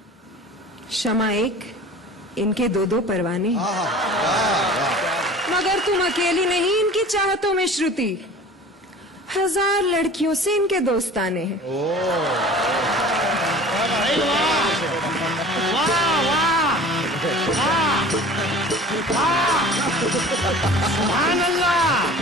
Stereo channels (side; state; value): both; normal; correlation 0.42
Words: शमा एक, इनके दो दो परवाने हैं। मगर तुम अकेली नहीं इनकी चाहतों में श्रुति, 1000 लड़कियों से इनके दोस्ताने हैं। सुभान अल्लाह,